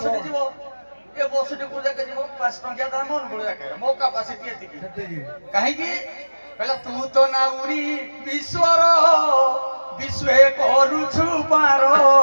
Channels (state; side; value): inverted; both; correlation -1.00